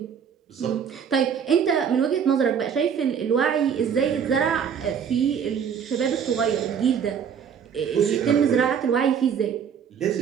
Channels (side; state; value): left; quieter; 7.5 dB